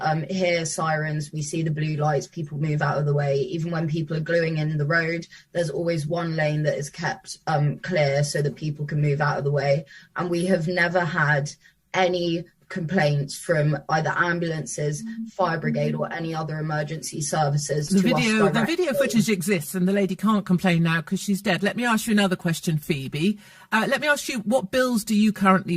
hear sirens, we see the blue lights, people move out of the way. Even when people are gluing in the road, there's always one lane that is kept clear so that people can move out of the way. And we have never had any complaints from either ambulances, fire brigade, or any other emergency services. The video footage exists, and the lady can't complain now because she's dead. Let me ask you another question, Phoebe. Let me ask you, what bills do you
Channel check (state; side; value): identical; both; correlation 1.00